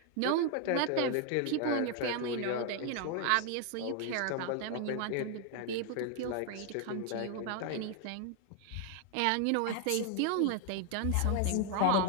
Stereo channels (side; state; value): both; different; correlation 0.00